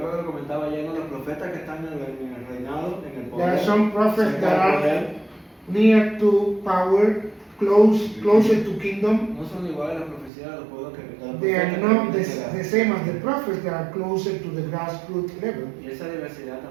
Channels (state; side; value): drops out; left; at 10.3 s